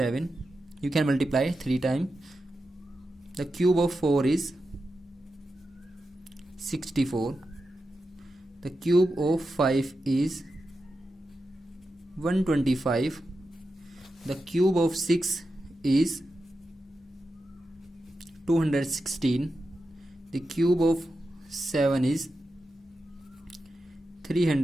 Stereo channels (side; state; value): both; normal; correlation 0.90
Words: You can multiply 3 times The cube of 4 is 64. The cube of 5 is 125. The cube of 6 is 216. The cube of 7 is